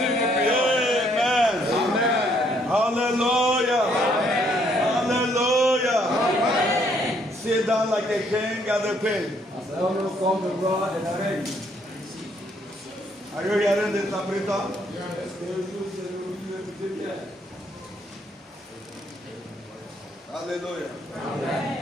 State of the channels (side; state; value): both; normal; correlation 0.68